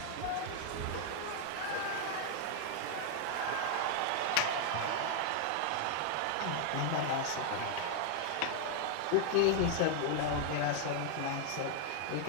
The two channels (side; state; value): both; different; correlation 0.00